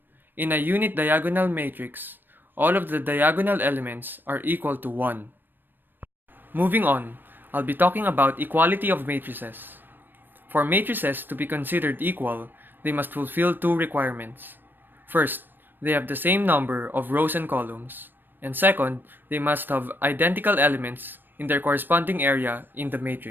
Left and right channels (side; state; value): left; late; 0.094 ms